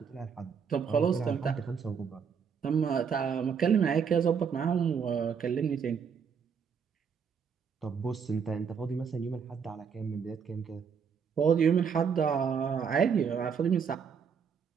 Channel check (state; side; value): quieter; left; 6.7 dB